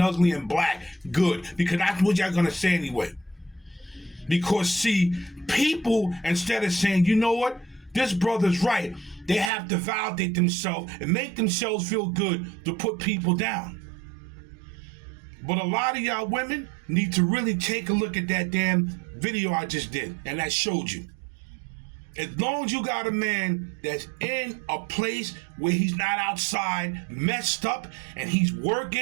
and black. Good, because that's what y'all gonna say anyway. Because see, people, instead of saying, you know what? This brother's right. They have to validate themselves and make themselves feel good to put people down. But a lot of y'all women need to really take a look at that damn video I just did and that showed you. As long as you got a man that's in a place where he's not outside messed up and he's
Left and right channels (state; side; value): drops out; left; at 9.5 s